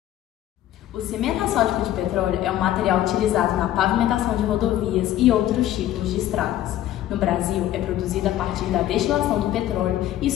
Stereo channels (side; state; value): right; quieter; 12.9 dB